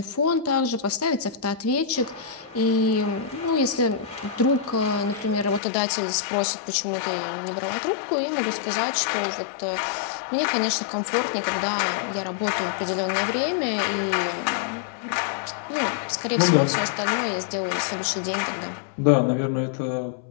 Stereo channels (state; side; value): drops out; right; at 5.6 s